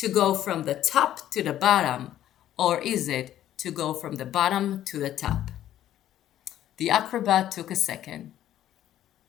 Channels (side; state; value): right; quieter; 12.2 dB